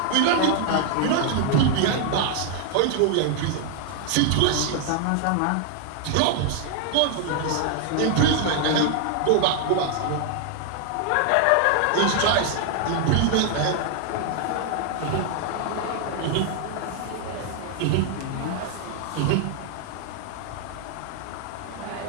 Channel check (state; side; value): different; both; correlation 0.00